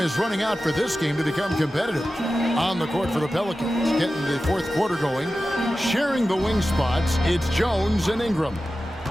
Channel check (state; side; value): normal; both; correlation 0.94